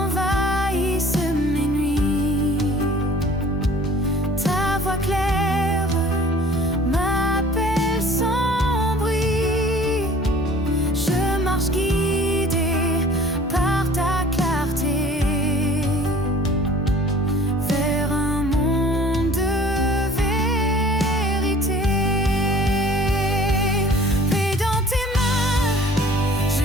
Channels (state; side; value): normal; both; correlation 0.49